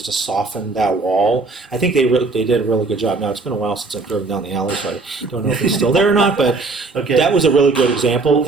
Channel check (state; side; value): quieter; left; 3.8 dB